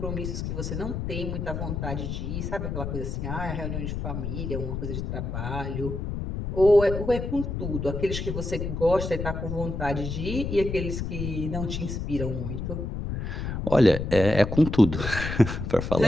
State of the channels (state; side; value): noise; left; rumble, 4 dB below the sound